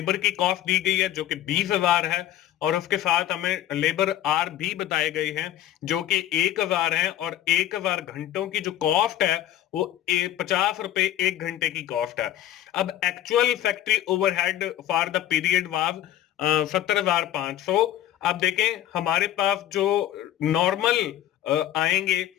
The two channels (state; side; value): quieter; right; 12.5 dB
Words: की कॉस्ट दी गई है जो कि 20,000 है और उसके साथ हमें लेबर आर भी बताए गए हैं जो कि 1,000 है और 1,000 घंटों की जो कॉस्ट है वो 50 रुपए एक घंटे की कॉस्ट है। अब actual factory overhead for the period was 17,500। अब देखें, हमारे पास जो नॉर्मल आएंगे